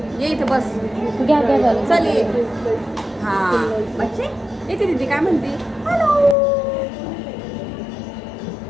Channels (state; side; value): drops out; right; at 6.4 s